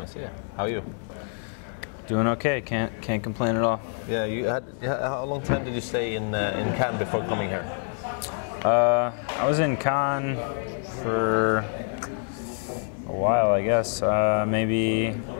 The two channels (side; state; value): right; silent; 61 dB below the other